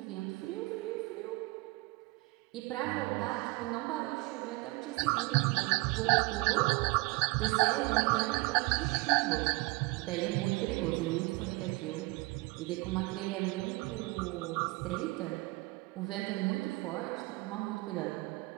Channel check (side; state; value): left; quieter; 24.3 dB